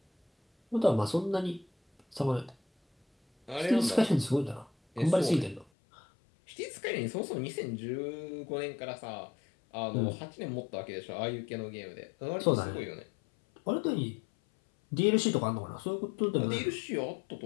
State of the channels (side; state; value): right; drops out; at 5.7 s